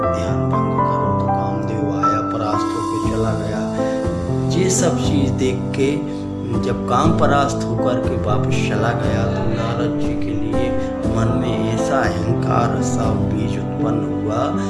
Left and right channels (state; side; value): identical; both; correlation 1.00